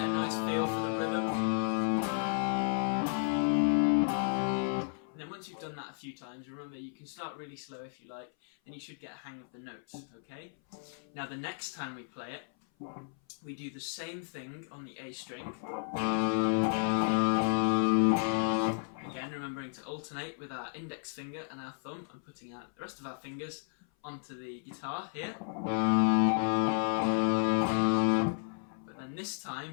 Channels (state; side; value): silent; right; 56 dB below the other